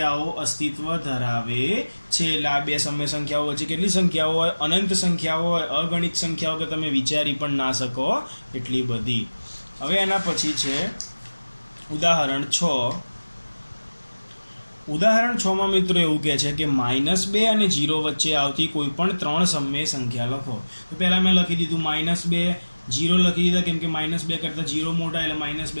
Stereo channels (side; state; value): both; inverted; correlation -1.00